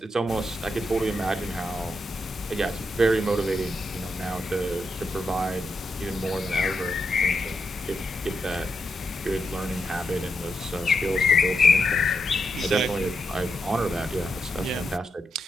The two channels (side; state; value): both; normal; correlation 0.84